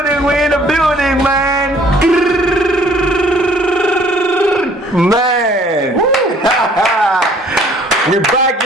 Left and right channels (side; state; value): both; normal; correlation 0.57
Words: we in the building, man. Man. We're back